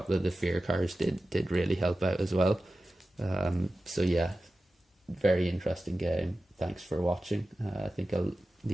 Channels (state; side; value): normal; both; correlation 0.94